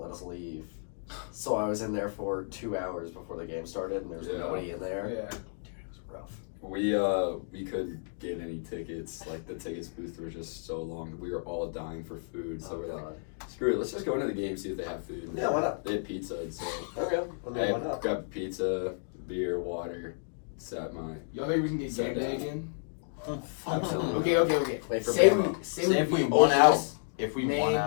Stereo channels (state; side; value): silent; right; digital silence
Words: us leave, so I was in there for 2 hours before the game started, and there was Yeah. nobody in there. Yeah. Dude, it was rough. We couldn't get any tickets. Like the tickets booth were just so long. We were all dying for food, so Oh, we're like, God. screw it. Let's just go into the game, see if they have food. Yeah, why not? They had pizza, so Okay, I mean, why I not? grabbed pizza, beer, water, sat my. Y'all think we can get Sat game day down. again? Absolutely. Okay. Wait for Say Bama. say Say if we beat won Ole out, Miss, if we Maine, won